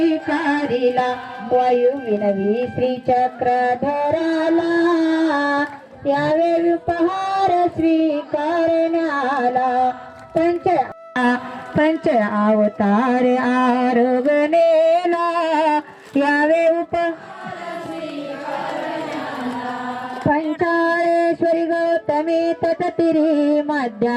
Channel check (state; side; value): identical; both; correlation 1.00